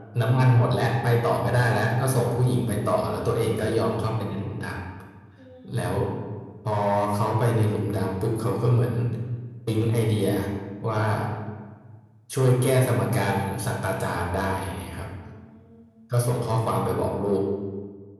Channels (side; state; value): both; identical; correlation 1.00